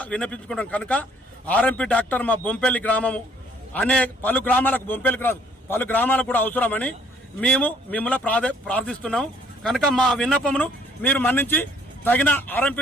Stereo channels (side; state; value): both; normal; correlation 0.62